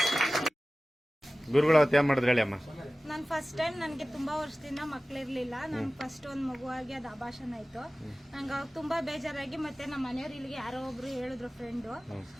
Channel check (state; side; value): normal; both; correlation 0.97